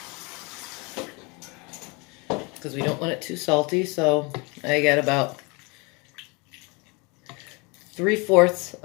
Because we don't want it too salty, so I got about 3/4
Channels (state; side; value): quieter; right; 28.9 dB